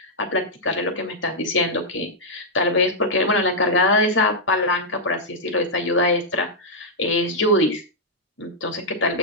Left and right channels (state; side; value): normal; both; correlation -0.07